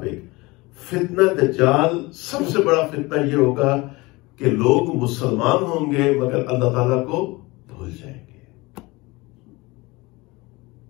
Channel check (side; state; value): right; quieter; 23.0 dB